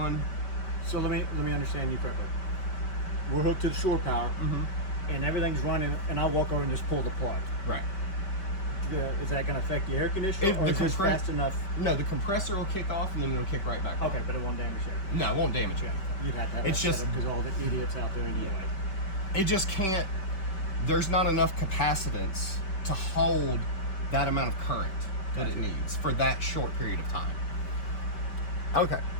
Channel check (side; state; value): right; late; 5.2 ms